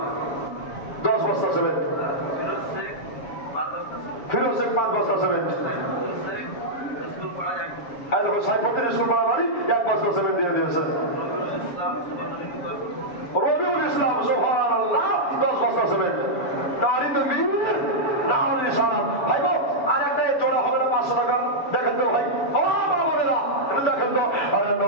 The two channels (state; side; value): late; right; 7.1 ms